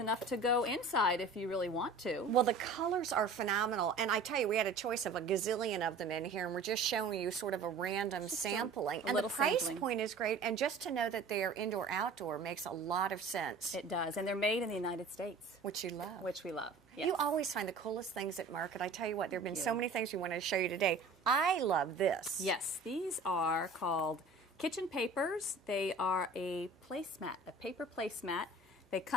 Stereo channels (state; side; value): quieter; left; 3.5 dB